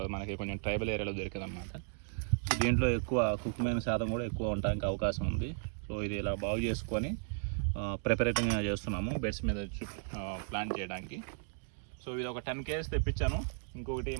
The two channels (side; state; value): left; silent; digital silence